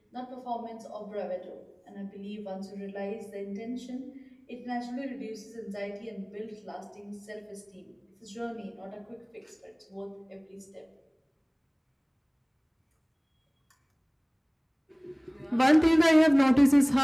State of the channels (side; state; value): both; identical; correlation 1.00